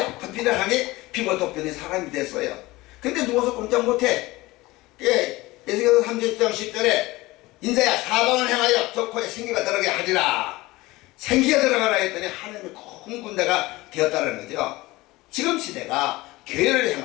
피를 향해 피부 덮여진 사람이 됐어요. 근데 누워서 꼼짝 못해. 에스겔서 30장 10절에 인자야 사방을 향하여 저 코에 생기가 들어가게 하리라. 생기가 들어가라 했더니 하나님의 큰 군대가 되었다는 거죠. 지금 시대가 교회를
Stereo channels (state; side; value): quieter; right; 20.1 dB